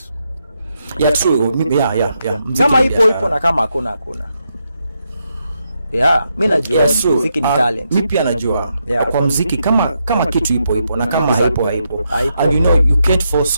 Yeah, true. Yeah. Kama ipo na kama hakuna. Yeah, mimi najua muziki ni talent. Mimi pia najua kwa muziki kama kitu ipo na kama haipo. And you know you can't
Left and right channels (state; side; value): inverted; both; correlation -0.82